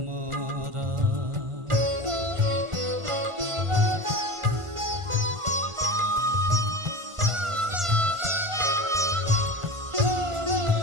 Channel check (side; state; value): left; late; 1.4 ms